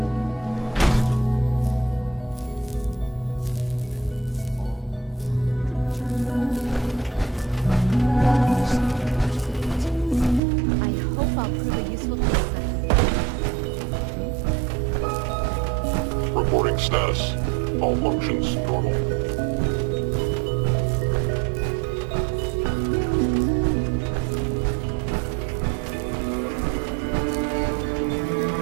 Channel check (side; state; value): left; drops out; at 10.4 s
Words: Reporting status. All functions normal.